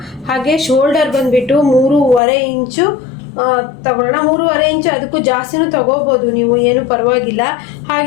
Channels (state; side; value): drops out; right; at 2.2 s